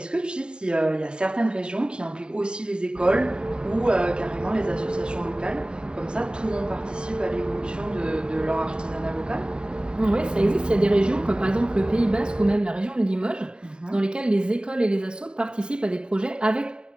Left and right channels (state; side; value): late; left; 0.049 ms